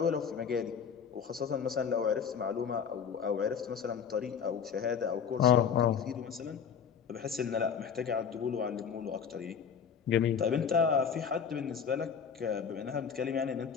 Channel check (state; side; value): quieter; right; 7.1 dB